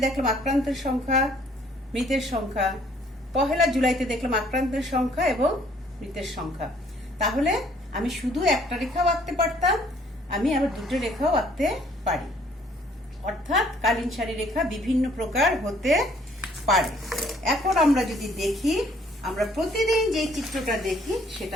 দেখলাম আক্রান্তের সংখ্যা, মৃতের সংখ্যা। 1 জুলাইতে দেখলাম আক্রান্তের সংখ্যা এবং মৃতের সংখ্যা। তাহলে আমি শুধু একটা রেখাও আঁকতে পারতাম, আমি আবার 2টো রেখাও আঁকতে পারি। অর্থাৎ কালীন সারি রেখা বিভিন্ন প্রকার হতে পারে। এখন আমরা যদি দেখি, আমরা প্রতিদিন যে চিত্রটা দেখি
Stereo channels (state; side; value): normal; both; correlation 0.61